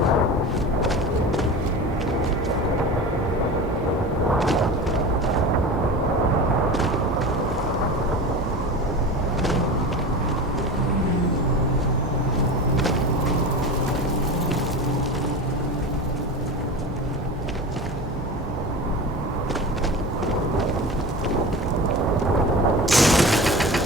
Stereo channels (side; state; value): both; normal; correlation 0.30